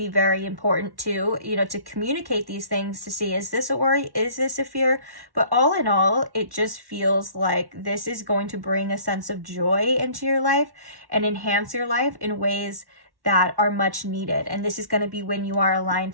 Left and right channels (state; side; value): late; left; 1.1 ms